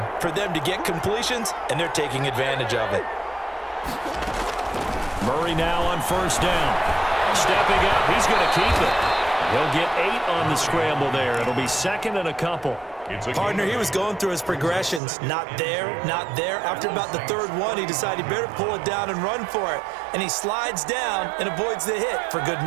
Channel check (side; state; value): left; drops out; at 15.0 s